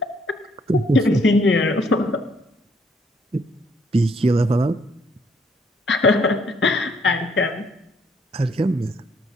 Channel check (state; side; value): normal; both; correlation 0.68